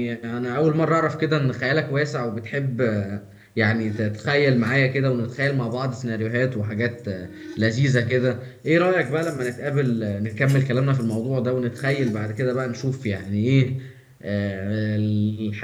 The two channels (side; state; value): both; identical; correlation 1.00